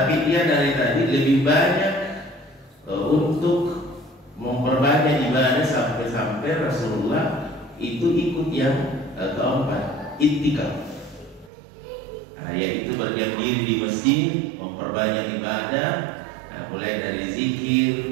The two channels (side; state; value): left; drops out; at 11.5 s